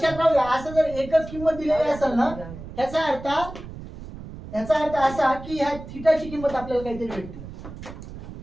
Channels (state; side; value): noise; right; rumble, 13 dB below the sound